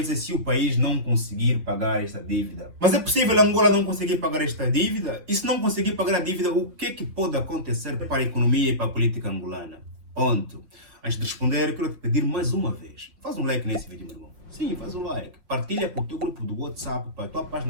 se o país não conseguir pagar essa dívida. Mas é possível Angola não conseguir pagar esta dívida? E se não conseguir pagar a dívida, o que é que pode acontecer para a economia e para a política angolana? Ponto. Antes de responder, quero te pedir mais uma vez. Faz um like nesse vídeo, meu irmão. Sim, faz um like. Partilha para o teu grupo do WhatsApp, para a tua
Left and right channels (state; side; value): late; left; 5.8 ms